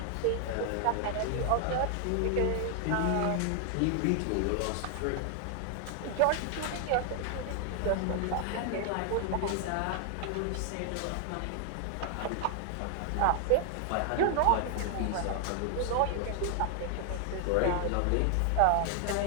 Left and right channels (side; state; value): both; different; correlation 0.00